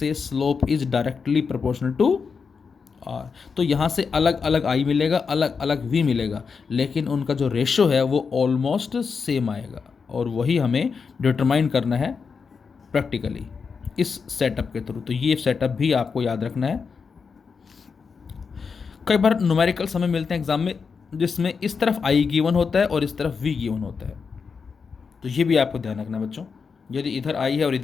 slope is directly proportional to r। तो यहाँ से अलग अलग i मिलेगा, अलग अलग v मिलेगा, लेकिन उनका जो रेशो है वो ऑलमोस्ट सेम आएगा, और वही हमें डिटरमाइन करना है प्रैक्टिकली इस सेटअप के थ्रू। तो ये सेटअप भी आपको याद रखना है। कई बार न्यूमेरिकल्स हमें मिलते हैं एग्जाम में जिसमें इस तरफ आई गिवन होता है और इस तरफ वी गिवन होता है, तो ये भी आपको ध्यान रखना है बच्चों। यदि इधर आई है और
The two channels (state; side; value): quieter; right; 5.5 dB